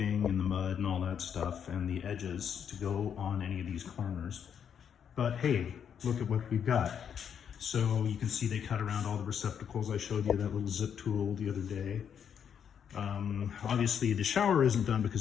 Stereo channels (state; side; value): quieter; right; 8.1 dB